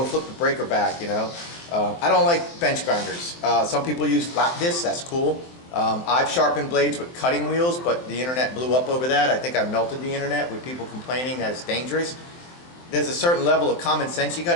flip the breaker back. You know, I don't like bench grinders. Some people use flat discs. That's cool. I've sharpened blades with cutting wheels, but the internet blew up over that. I think I melted the internet with people complaining that it's dangerous. There's a certain level of common sense you got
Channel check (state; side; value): late; right; 23 ms